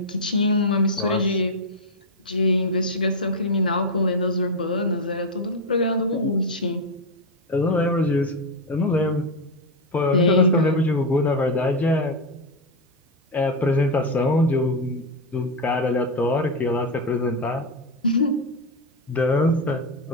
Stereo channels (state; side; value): normal; both; correlation 0.07